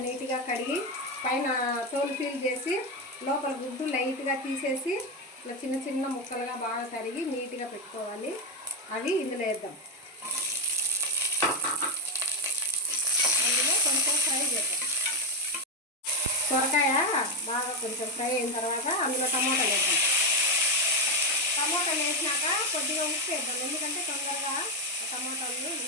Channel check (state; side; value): normal; both; correlation 0.08